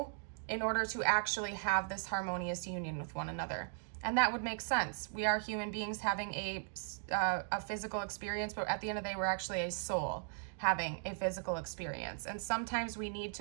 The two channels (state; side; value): silent; left; digital silence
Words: in order to actually have this harmonious union with one another. And that would make sense. We are human beings having a physical experience, but at the end of the day, we're actually a soul having a physical experience. And sometimes we need